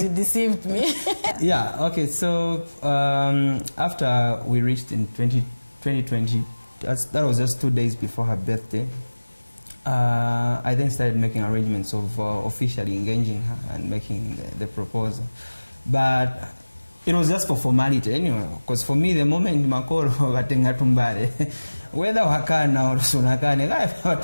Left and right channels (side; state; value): both; inverted; correlation -1.00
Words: you deceived me. Yeah, okay, so after we reached in 2020, that was just 2 days before her birthday, I then started making arrangements of officially engaging her and making the proposal. But it was just for formality anyway, because for me, the moment makolo watenga tumbare, whether wakana or sunakane,